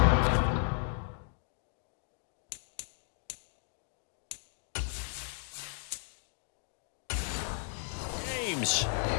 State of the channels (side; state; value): right; silent; 54 dB below the other